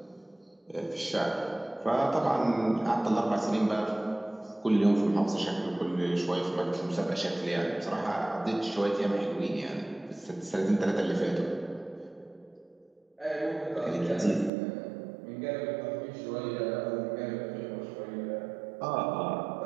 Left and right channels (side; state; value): left; drops out; at 14.5 s